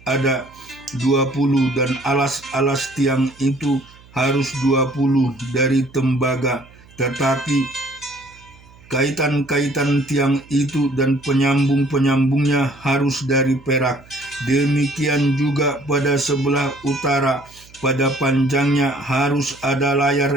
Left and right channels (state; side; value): noise; right; hum, 25 dB below the sound